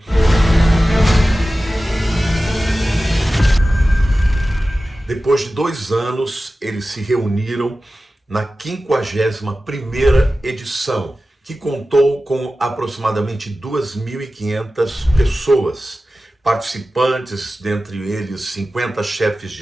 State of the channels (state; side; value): normal; both; correlation 0.95